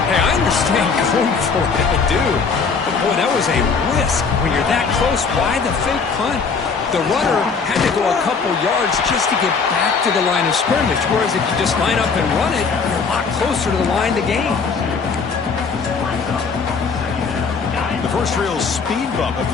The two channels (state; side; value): quieter; right; 5.2 dB